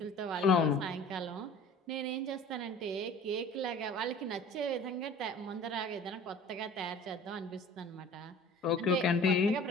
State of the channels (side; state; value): both; normal; correlation 0.45